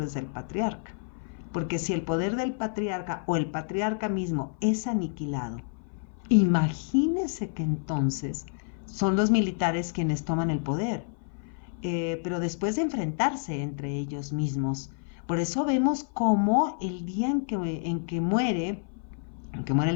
del patriarca, porque si el poder del patriarca o el patriarca mismo es aniquilado, imagínese que entonces son los militares quienes toman el poder, pero después de enfrentarse entre ellos mismos. Por eso vemos cómo el día en que muere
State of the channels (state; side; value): silent; right; 55 dB below the other